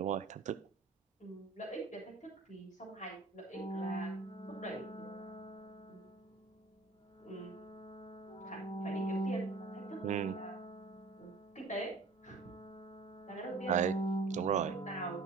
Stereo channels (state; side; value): quieter; left; 4.0 dB